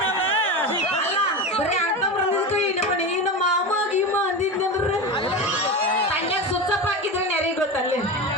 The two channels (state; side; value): normal; both; correlation 0.23